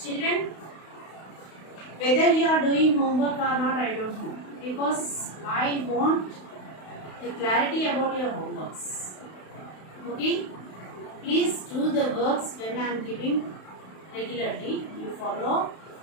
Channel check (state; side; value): late; right; 32 ms